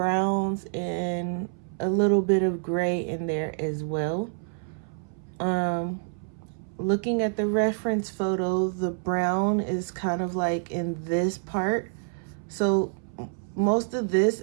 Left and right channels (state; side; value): silent; left; 60 dB below the other